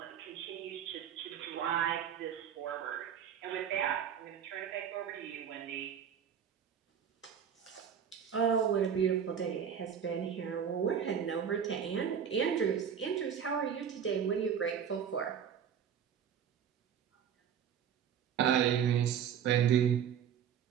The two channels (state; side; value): quieter; left; 8.2 dB